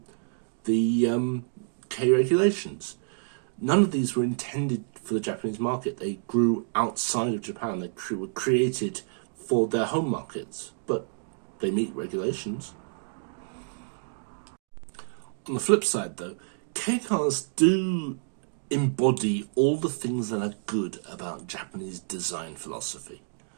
the Kei regulations. None of these were intended for the Japanese market. They grew outside of Japan. They were created for their home markets, but they meet regulations. On the flip side, though, Kei cars do embody all the things that are good about Japanese design philosophy.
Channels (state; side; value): silent; left; digital silence